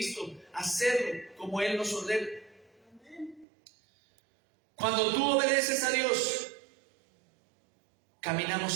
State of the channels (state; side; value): drops out; left; at 3.5 s